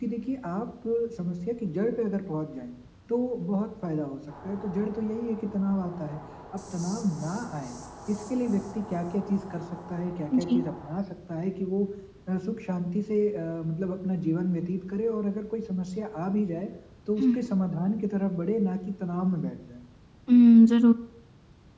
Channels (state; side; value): identical; both; correlation 1.00